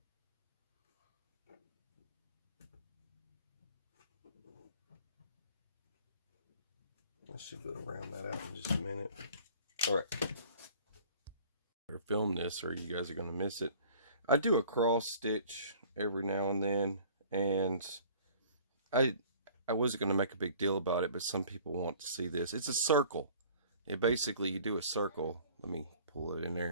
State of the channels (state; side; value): inverted; both; correlation -0.51